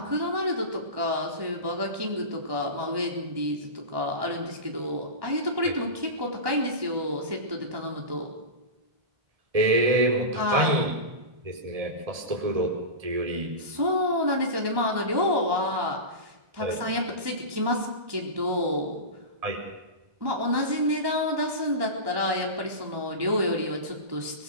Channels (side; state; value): left; late; 1.2 ms